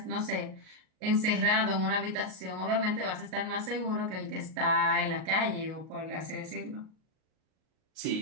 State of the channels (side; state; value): left; late; 38 ms